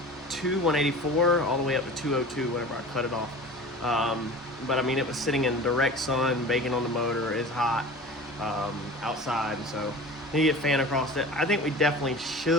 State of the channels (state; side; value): normal; both; correlation 0.38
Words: 184, all the way up to 202 whenever I cut it off. But I mean, it was sitting in direct sun, baking on the motor, it's hot outside, so you get a fan across it. I think we definitely